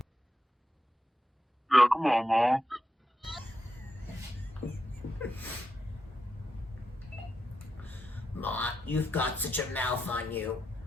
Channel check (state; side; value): normal; both; correlation 0.86